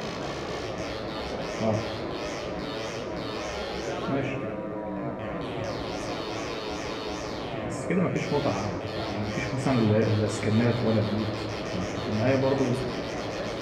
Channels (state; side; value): identical; both; correlation 1.00